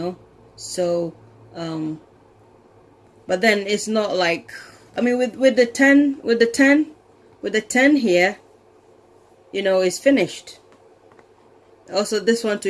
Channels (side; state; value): both; identical; correlation 1.00